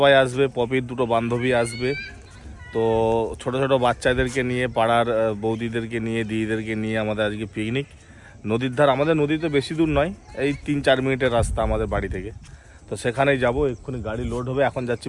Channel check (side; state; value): both; identical; correlation 1.00